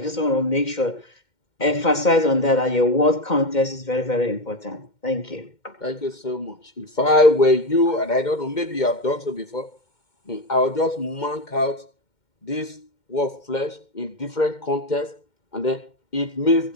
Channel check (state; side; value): late; right; 2.1 ms